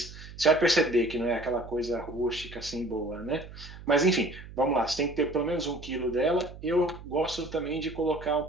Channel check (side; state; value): right; noise; hum, 15 dB below the sound